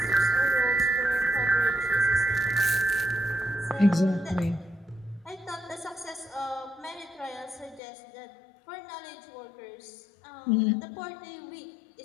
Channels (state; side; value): drops out; right; at 7.8 s